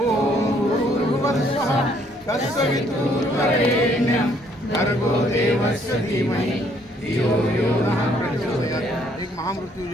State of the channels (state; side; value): normal; both; correlation 0.66